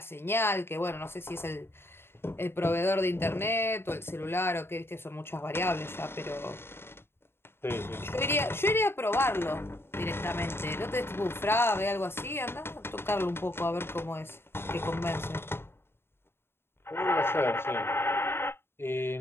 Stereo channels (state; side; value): late; right; 0.11 ms